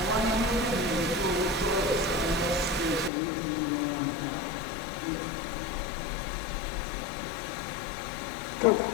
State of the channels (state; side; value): drops out; right; at 3.1 s